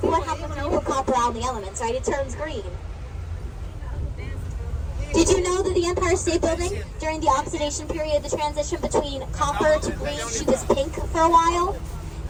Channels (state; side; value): identical; both; correlation 1.00